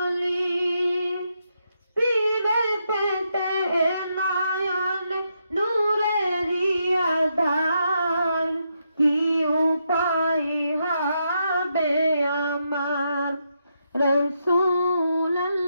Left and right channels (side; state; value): both; inverted; correlation -0.81